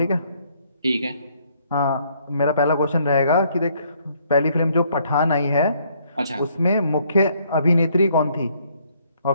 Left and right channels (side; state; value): both; inverted; correlation -0.67